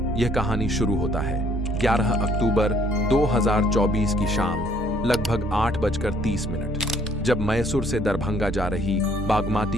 यह कहानी शुरू होता है 11 अक्टूबर 2024 की शाम लगभग 8:30, जब मैसूर से दरभंगा जा रही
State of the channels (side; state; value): both; normal; correlation 0.63